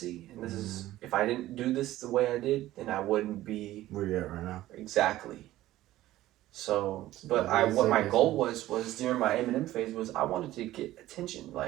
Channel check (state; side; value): quieter; left; 15.2 dB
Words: and this is, if I didn't do this the way I did, then I wouldn't be where you at right now. Exactly. So, but what my goal was during my Eminem phase was I wanted to get attention.